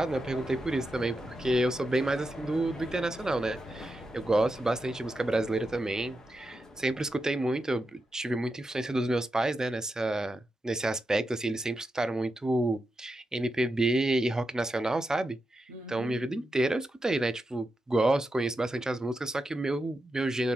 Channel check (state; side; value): normal; both; correlation 0.87